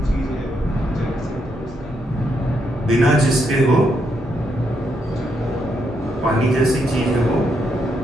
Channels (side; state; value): both; normal; correlation 0.78